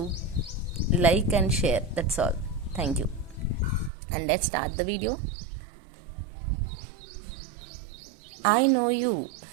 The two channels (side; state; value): left; drops out; at 3.9 s